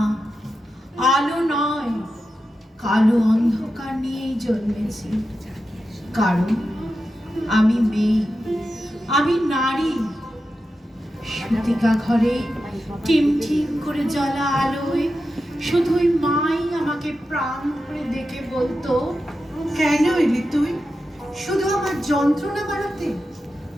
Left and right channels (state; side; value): normal; both; correlation 0.90